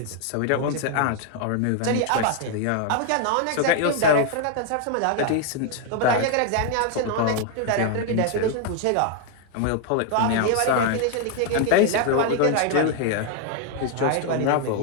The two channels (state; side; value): different; both; correlation 0.00